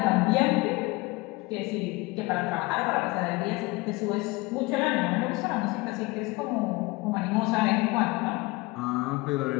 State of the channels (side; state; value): right; quieter; 23.2 dB